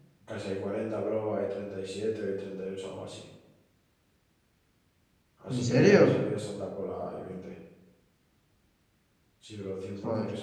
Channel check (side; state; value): both; identical; correlation 1.00